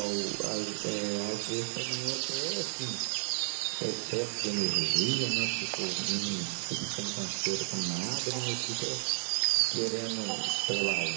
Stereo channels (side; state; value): left; silent; 56 dB below the other